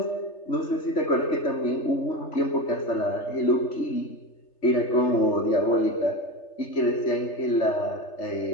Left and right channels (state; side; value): late; right; 3.3 ms